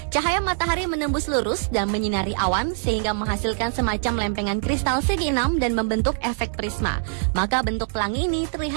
Cahaya matahari menembus lurus dan menyinari awan sehingga menghasilkan semacam lempengan kristal segi 6 dan membentuk efek prisma. Maka bentuk pelangi ini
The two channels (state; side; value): silent; left; digital silence